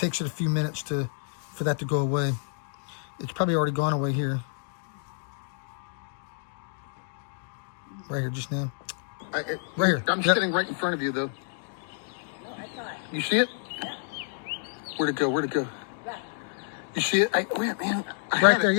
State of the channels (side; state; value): right; silent; digital silence